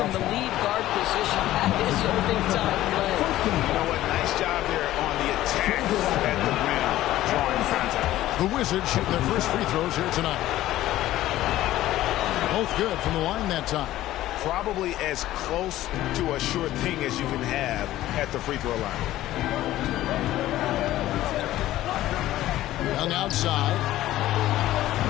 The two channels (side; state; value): right; quieter; 14.7 dB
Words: the lead guard position. That is a big-time play. You know what? Nice job there on the attack at the rim, drawing contact. The Wizards shooting their first free throws here tonight. Both good from the line that time. Probably as close to a sure thing as you can have at the free throw line. Young outside.